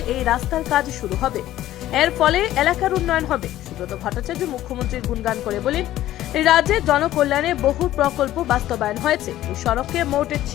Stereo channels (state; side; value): quieter; right; 13.9 dB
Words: এই রাস্তার কাজ শুরু হবে। এর ফলে এলাকার উন্নয়ন হবে। সুব্রত ভট্টাচার্য মুখ্যমন্ত্রীর গুণগান করে বলেন, রাজ্যে জনকল্যাণে বহু প্রকল্প বাস্তবায়ন হয়েছে। এই সড়কে মোট